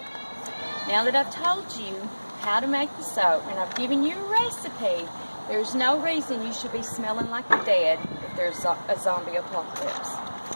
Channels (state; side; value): inverted; both; correlation -1.00